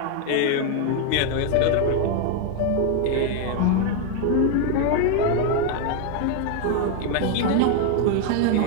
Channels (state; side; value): different; both; correlation 0.01